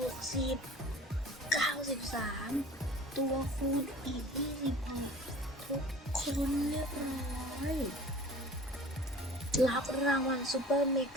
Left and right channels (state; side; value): normal; both; correlation 0.44